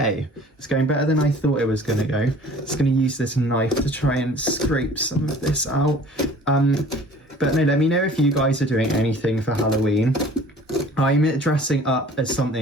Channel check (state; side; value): normal; both; correlation 0.49